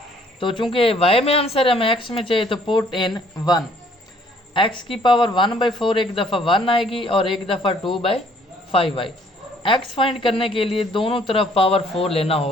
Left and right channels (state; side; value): normal; both; correlation 0.61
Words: तो चूंकि y में आंसर है, हमें x में चाहिए, तो पुट इन 1। x की पावर 1/4 एक दफ़ा 1 आएगी और एक दफ़ा 2/5 आएगी। x फाइंड करने के लिए दोनों तरफ पावर 4 लेना